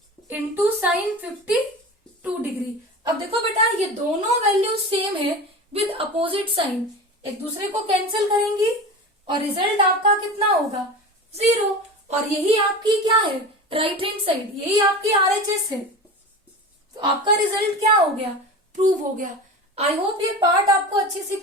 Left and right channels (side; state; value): both; normal; correlation 0.30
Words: into sine 52 degree. अब देखो बेटा, ये दोनों वैल्यूज सेम है विद अपोजिट साइन, एक दूसरे को कैंसिल करेंगी और रिजल्ट आपका कितना होगा 0। और यही आपकी क्या है राइट हैंड साइड, यही आपकी RHS है। तो आपका रिजल्ट क्या हो गया प्रूव हो गया। आई होप ये पार्ट आपको अच्छे से